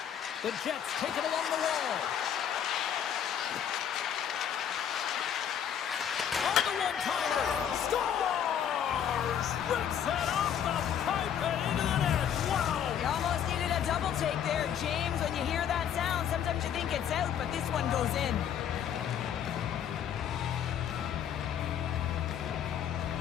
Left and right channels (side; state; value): right; quieter; 9.0 dB